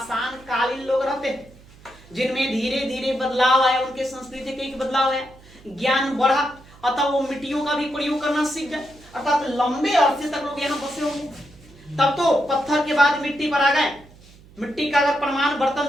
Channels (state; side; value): noise; right; hum, 24 dB below the sound